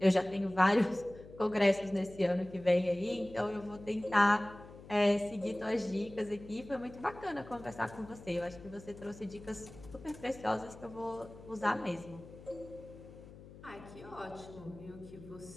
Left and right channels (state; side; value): noise; left; hum, 18 dB below the sound